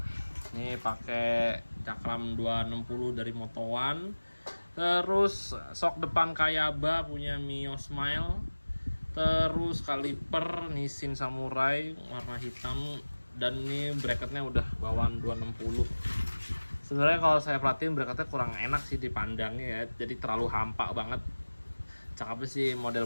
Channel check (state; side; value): inverted; both; correlation -1.00